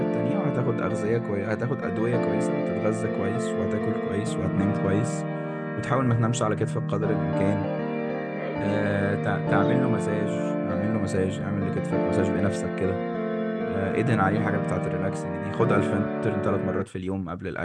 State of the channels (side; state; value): both; identical; correlation 1.00